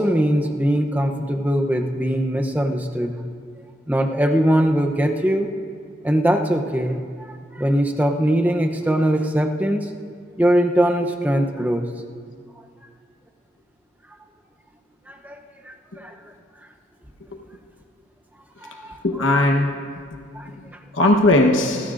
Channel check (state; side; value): normal; both; correlation 0.78